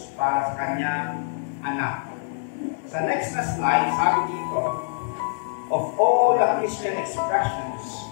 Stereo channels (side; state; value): right; silent; digital silence